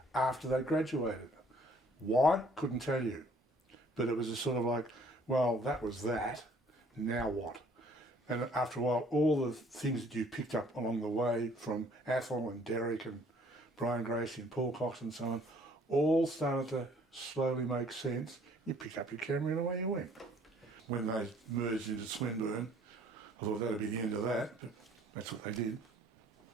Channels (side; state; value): both; normal; correlation 0.58